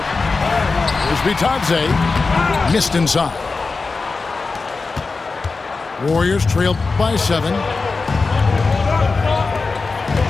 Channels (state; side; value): quieter; right; 4.1 dB